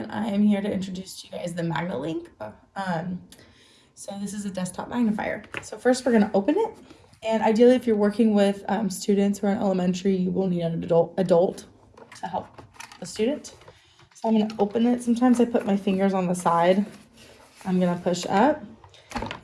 I am here to introduce to you guys the MagniLink. So this is a desktop magnifier. So first we're going to open it, and ideally if you're working with students who are in elementary, you will need an adult to help the student. So I'm going to open it. Sometimes I put my fingers on the side. I'm going to push up,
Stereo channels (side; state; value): both; identical; correlation 1.00